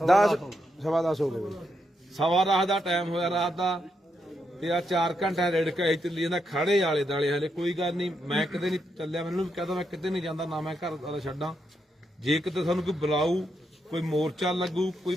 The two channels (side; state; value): both; normal; correlation 0.81